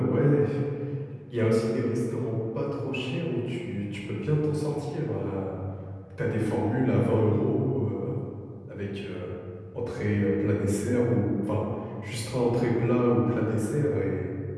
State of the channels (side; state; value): both; identical; correlation 1.00